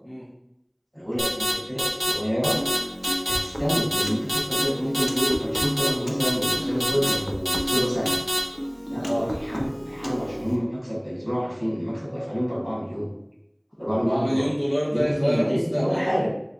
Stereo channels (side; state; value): both; identical; correlation 1.00